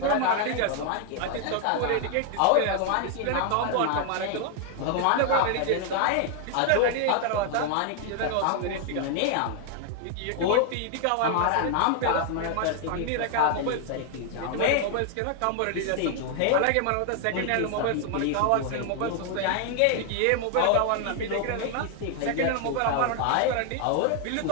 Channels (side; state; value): both; different; correlation 0.00